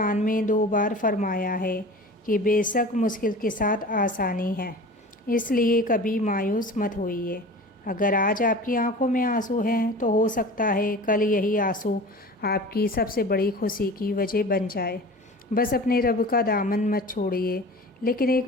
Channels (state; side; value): normal; both; correlation 0.38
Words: میں 2 بار فرمایا ہے کہ بے شک مشکل کے ساتھ آسانی ہے، اس لیے کبھی مایوس مت ہوئیے۔ اگر آج آپ کی آنکھوں میں آنسو ہیں تو ہو سکتا ہے کل یہی آنسو آپ کی سب سے بڑی خوشی کی وجہ بن جائے۔ بس اپنے رب کا دامن مت چھوڑیے۔ لیکن ایک